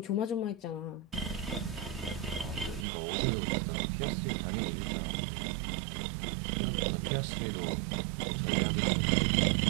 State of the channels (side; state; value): left; drops out; at 2.9 s